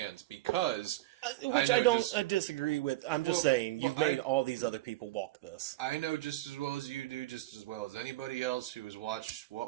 because which I don't disagree with. I'm just saying you've made all these other people walk this. I know just as well as you do, just as well as anybody else who has watched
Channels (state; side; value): quieter; left; 17.3 dB